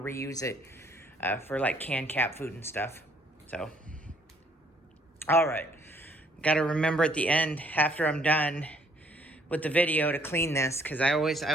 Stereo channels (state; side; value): normal; both; correlation 0.64